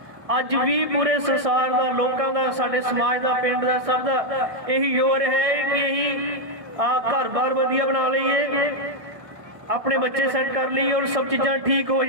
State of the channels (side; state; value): left; late; 1.6 ms